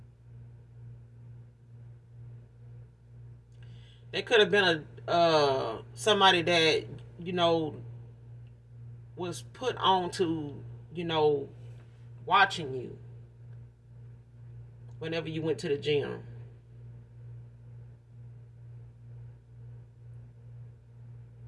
they could have been a somebody that, you know, was put on to, you know, watching you whenever you went to the gym.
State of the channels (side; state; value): both; identical; correlation 1.00